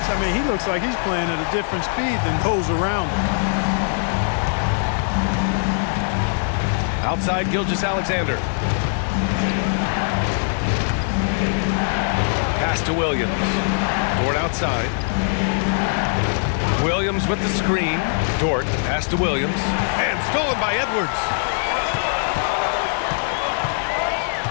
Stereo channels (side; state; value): right; silent; digital silence